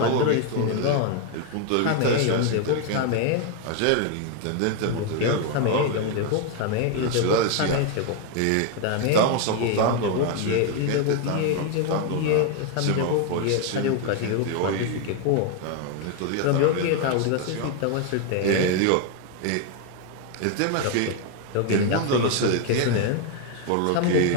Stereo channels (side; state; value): both; different; correlation 0.01